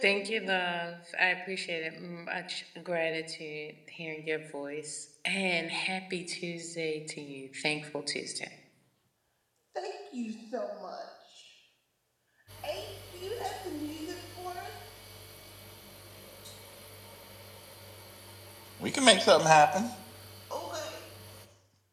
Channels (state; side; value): identical; both; correlation 1.00